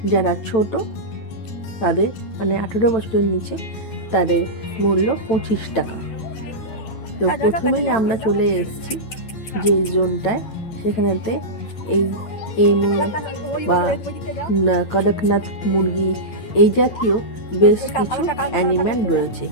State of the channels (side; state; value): right; late; 9.0 ms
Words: যারা ছোট তাদের 18 বছরের নিচে তাদের মূল্য 25 টাকা। তো প্রথমেই আমরা চলে এসেছি যে জোনটায়, সেখানেতে এই এমু বা কড়কনাথ মুরগি এই জাতীয় বেশ কিছু অ্যানিম্যাল রয়েছে।